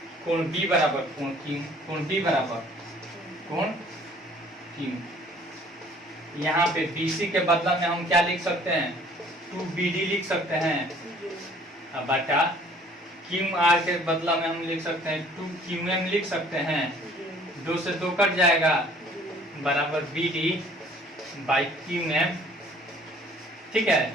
कोण बी बराबर कोण क्यू, कोण बी बराबर कोण क्यू। यहाँ पे बी सी के बदला में हम क्या लिख सकते हैं, 2BD लिख सकते हैं, अब बटा क्यू आर के बदला में हम लिख सकते हैं 2QM लिख सकते हैं, 2 से 2 कट जाएगा बराबर BD बाई QM। ठीक है,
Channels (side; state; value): both; normal; correlation 0.55